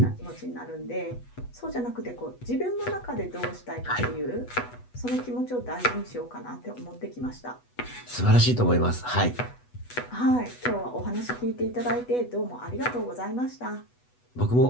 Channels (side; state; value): right; late; 8.1 ms